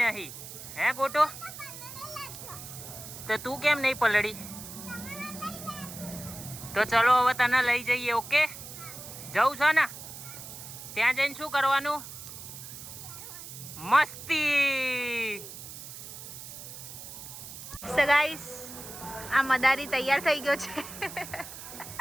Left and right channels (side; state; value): right; noise; hiss, 12 dB below the sound